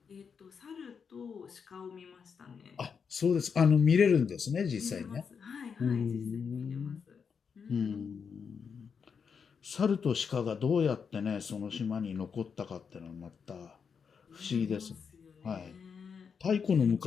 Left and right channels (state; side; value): quieter; right; 6.3 dB